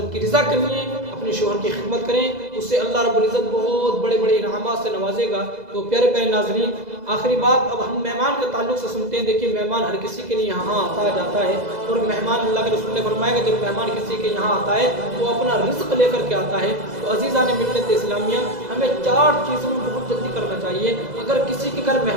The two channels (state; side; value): late; left; 2.0 ms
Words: کی رضا کے لیے اپنے شوہر کی خدمت کریں. اس سے اللہ رب العزت بہت بڑے بڑے انعامات سے نوازے گا. تو پیارے پیارے ناظرین آخری بات اب ہم مہمان کے تعلق سے سنتے ہیں. دیکھیے مہمان ہر کسی کے لیے یہاں آتا جاتا ہے اور مہمان اللہ کے رسول نے فرمایا کہ جب مہمان کسی کے یہاں آتا ہے تو اپنا رزق لے کر کے آتا ہے. تو عزیزان ملت اسلامیہ ہمیں 4 چیزوں میں بہت جلدی کرنا چاہیے. اگر کسی کے گھر